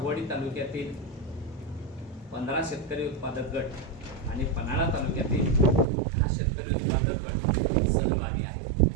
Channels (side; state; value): left; drops out; at 5.9 s